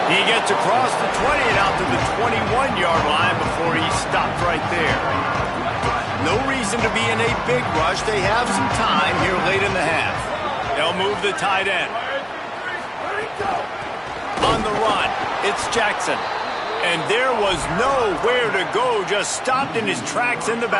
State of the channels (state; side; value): identical; both; correlation 1.00